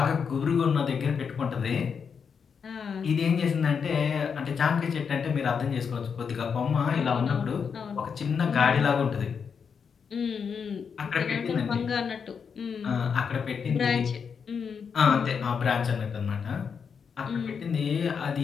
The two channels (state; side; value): quieter; right; 6.4 dB